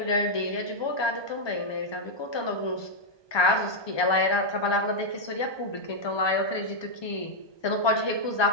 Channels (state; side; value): late; right; 1.2 ms